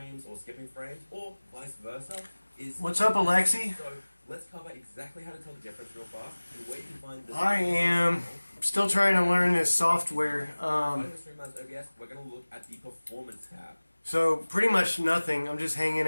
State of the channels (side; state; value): both; inverted; correlation -1.00